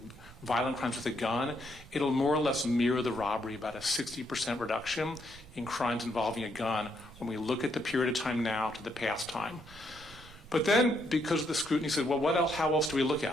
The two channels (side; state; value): both; normal; correlation 0.75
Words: violent crimes with a gun, it'll more or less mirror the robbery, about a 60% reduction in crimes involving a gun when we look at the period of time now to the past time. But then, because of the scrutiny, said, well, what else, how else do we look